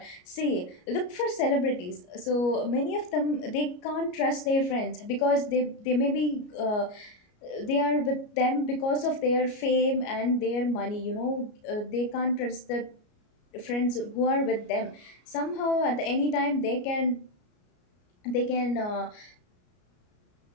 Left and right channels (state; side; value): late; right; 33 ms